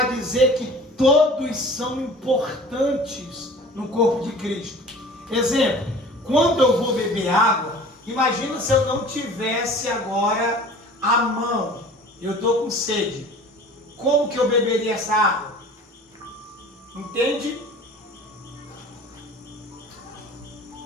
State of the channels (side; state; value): both; normal; correlation 0.44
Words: dizer que todos são importantes no corpo de Cristo. Exemplo, quando eu vou beber água, imagina se eu não tivesse agora a mão, eu estou com sede. Como que eu beberia essa água? Entende?